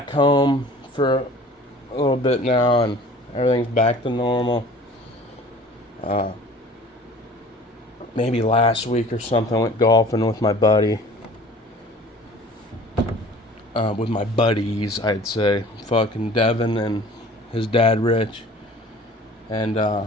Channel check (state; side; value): normal; both; correlation 0.46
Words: home for a little bit now, and everything's back to normal. Maybe last week or something, I went golfing with my buddy. With my buddies, I'd say. Fucking Devin and his dad, Rich. And,